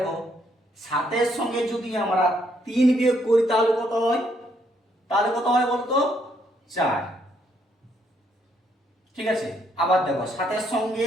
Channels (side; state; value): both; normal; correlation 0.72